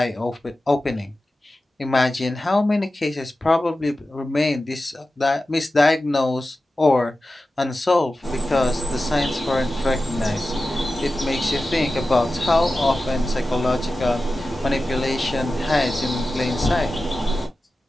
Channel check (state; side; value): normal; both; correlation 0.94